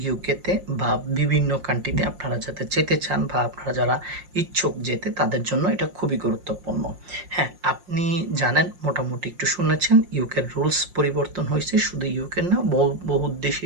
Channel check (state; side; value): late; left; 5.6 ms